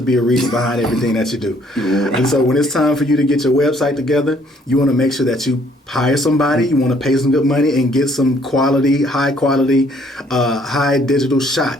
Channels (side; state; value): both; normal; correlation 0.63